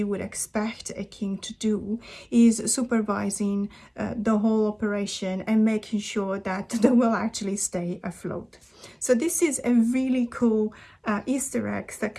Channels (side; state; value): both; identical; correlation 1.00